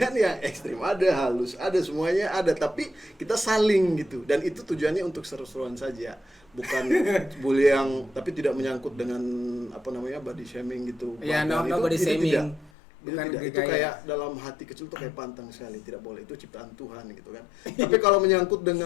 yang ekstrim ada, halus ada, semuanya ada, tapi kita saling gitu dan itu tujuannya untuk seru-seruan saja, bukan bully yang tapi tidak menyangkut dengan apa namanya body shaming gitu. Ya, Bahkan no body shaming. Itu Bukan tidak, itu gaya. kayak dalam hati kecil tuh kayak pantang sekali, tidak boleh, itu ciptaan Tuhan gitu kan. Tapi kalau menyangkut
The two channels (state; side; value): drops out; right; at 12.7 s